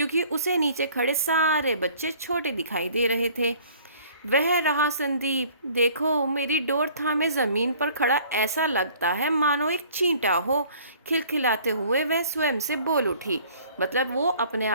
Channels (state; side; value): inverted; both; correlation -0.53